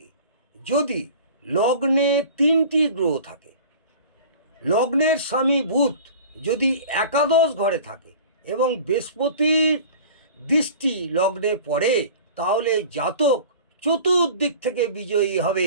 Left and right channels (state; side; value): inverted; both; correlation -0.42